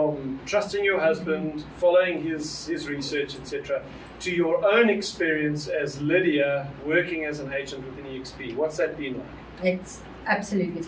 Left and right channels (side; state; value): both; identical; correlation 1.00